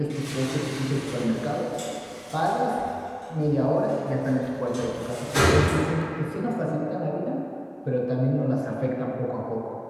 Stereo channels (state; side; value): identical; both; correlation 1.00